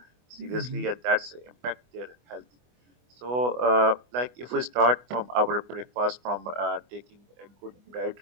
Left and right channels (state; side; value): late; left; 24 ms